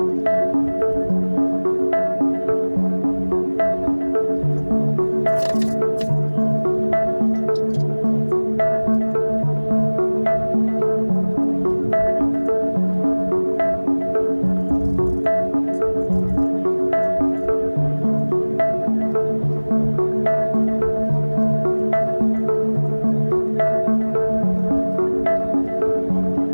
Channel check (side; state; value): both; inverted; correlation -1.00